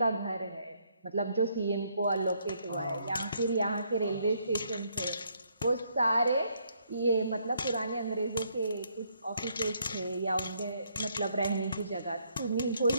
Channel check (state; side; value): inverted; both; correlation -0.71